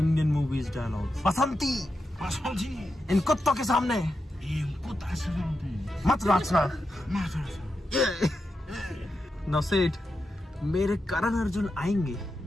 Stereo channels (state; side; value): normal; both; correlation 0.88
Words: movies dialogue. Basanti इन कुत्तों के सामने मत नाचना। नाउ से इट, मेरे करण अर्जुन आएंगे,